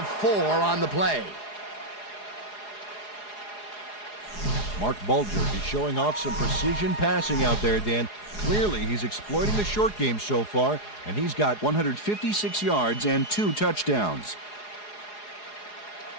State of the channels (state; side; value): late; right; 4.8 ms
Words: 4 on the play. Mark Bulger is showing off some precision passing out there, Dan. Clearly, he's exploiting the short game so far, and he's got 156 yards and 2 touchdowns.